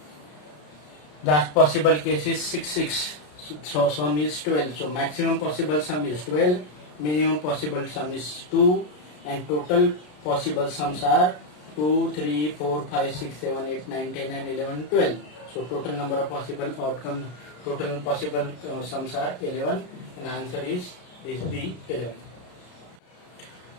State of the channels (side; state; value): right; late; 33 ms